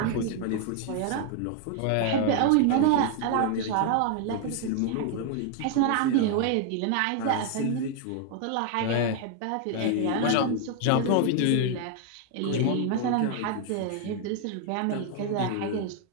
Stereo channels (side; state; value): both; different; correlation 0.00